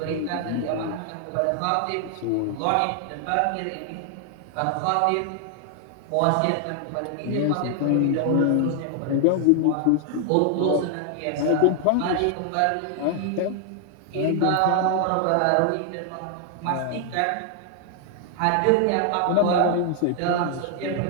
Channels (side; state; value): both; different; correlation 0.00